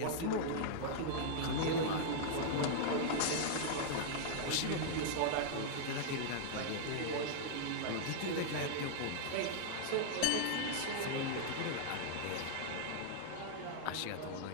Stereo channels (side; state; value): both; different; correlation -0.01